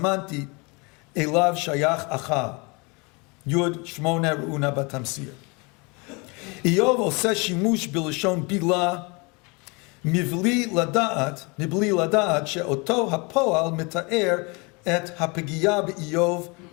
אליו שייך אכל. יוד 8 ראונה בתמסיר. איוב עושה שימוש בלשון בילה מבלי לדעת שאותו הפועל מתאר את הפגיעה באיוב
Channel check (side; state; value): right; quieter; 29.3 dB